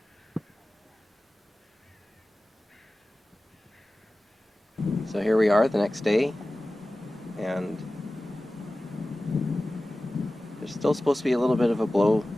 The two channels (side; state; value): both; normal; correlation 0.96